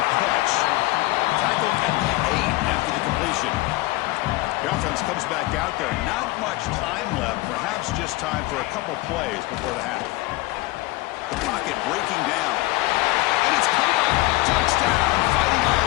catch. Tackled at the 8 after the completion. The offense comes back out there. Not much time left. Perhaps just time for a couple plays before the half. The pocket breaking down. And it's caught. Touchdown. Fighting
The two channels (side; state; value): right; quieter; 19.9 dB